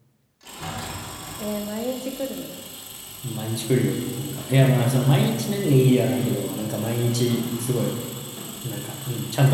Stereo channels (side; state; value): both; identical; correlation 1.00